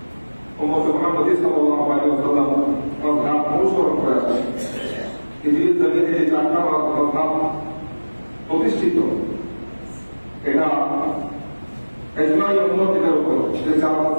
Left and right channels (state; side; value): inverted; both; correlation -1.00